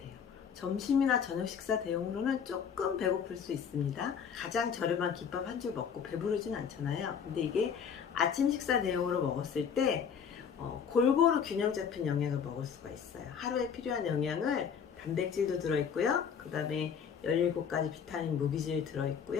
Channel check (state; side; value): quieter; right; 7.2 dB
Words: 점심이나 저녁 식사 대용으로는 조금 배고플 수 있습니다. 가장 저렴한 김밥 한 줄 먹고 배부르진 않잖아요. 근데 이게 아침 식사 대용으로 먹었을 때 골고루 균형 잡힌 영양을 먹을 수가 있어요. 하루에 필요한 영양을 단백질도 들어있고요. 그 다음에 17가지 비타민 무기질